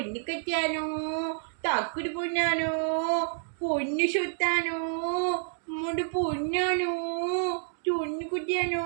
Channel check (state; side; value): silent; left; digital silence